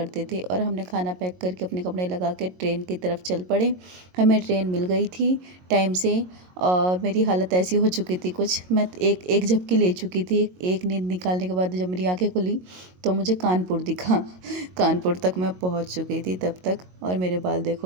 थे। और हमने खाना पैक करके अपने कपड़े लगा के ट्रेन की तरफ चल पड़े। हमें ट्रेन मिल गई थी टाइम से। और मेरी हालत ऐसी हो चुकी थी कुछ, मैं एक एक झपकी ले चुकी थी। एक नींद निकालने के बाद जब मेरी आंखें खुली तो मुझे कानपुर दिखा। कानपुर तक मैं पहुंच चुकी थी तब तक। और मेरे बाल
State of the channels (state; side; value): late; left; 22 ms